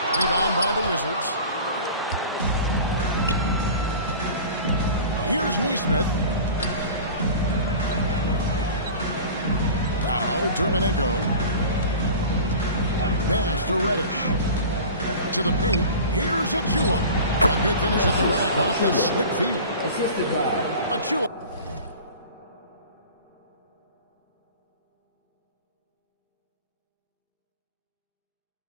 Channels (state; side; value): inverted; both; correlation -0.38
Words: Rebound by the Wizards. Here's Neesmith. Now Dermenenko. Pass to Reddish. To the paint. Here's Achua. A good finish at the rack off the slick feet. Assisted by Achua.